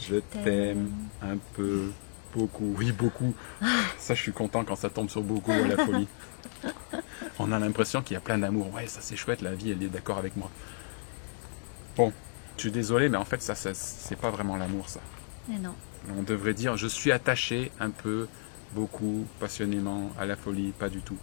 t'aime, un peu, beaucoup, oui beaucoup. Ça je suis content quand ça tombe sur beaucoup à la folie. On a l'impression qu'il y a plein d'amour. Ouais, ça c'est chouette, la vie elle est d'accord avec moi. Bon, je suis désolé, mais en fait ça c'est pas vraiment l'amour ça. Mais non. On devrait dire je suis attaché un peu, beaucoup, passionnément, à la folie, pas du tout.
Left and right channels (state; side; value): silent; right; digital silence